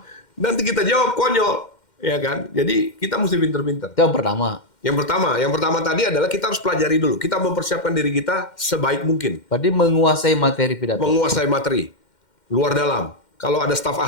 Nanti kita jawab konyol. Ya kan? Jadi kita mesti pinter-pinter. Itu yang pertama. Yang pertama tadi adalah kita harus pelajari dulu. Kita mempersiapkan diri kita sebaik mungkin. Berarti menguasai materi pidato. Menguasai materi. Luar dalam. Kalau ada staf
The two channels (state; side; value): late; right; 2.1 ms